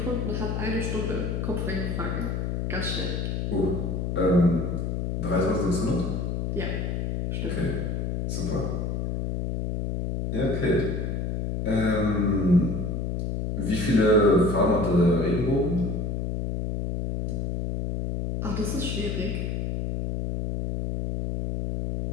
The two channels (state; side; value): noise; left; hum, 1 dB below the sound